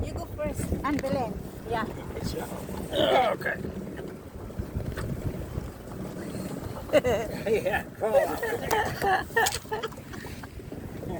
You go first. And Belen. Yeah. Okay. Yeah, come on.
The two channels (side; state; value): both; identical; correlation 1.00